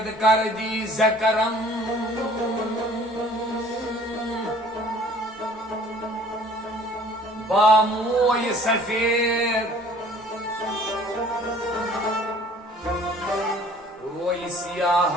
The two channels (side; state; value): both; normal; correlation 0.53